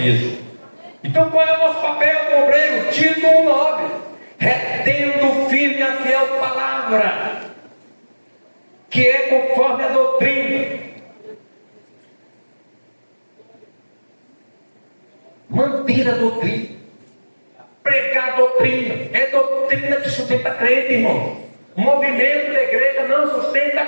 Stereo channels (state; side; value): inverted; both; correlation -1.00